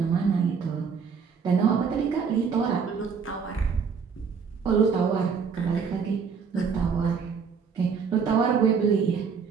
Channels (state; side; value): quieter; left; 6.0 dB